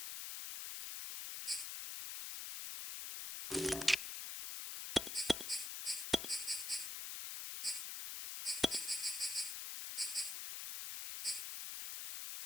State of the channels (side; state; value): left; noise; hiss, 5 dB below the sound